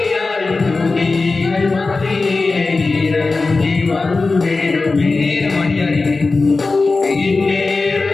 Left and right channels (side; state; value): right; quieter; 3.8 dB